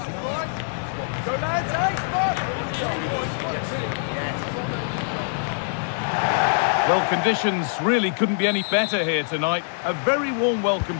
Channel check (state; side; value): silent; right; digital silence